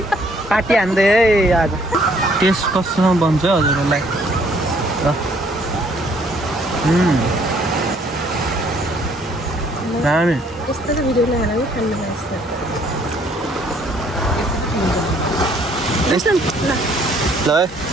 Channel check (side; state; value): both; normal; correlation 0.63